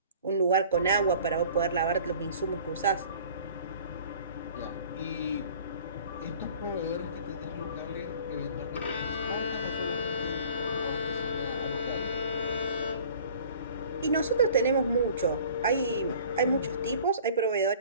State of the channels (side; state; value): both; inverted; correlation -0.49